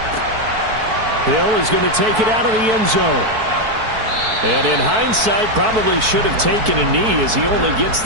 Hill is going to take it out of the end zone. And in hindsight, probably should have taken a knee as he only gets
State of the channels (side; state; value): left; late; 4.6 ms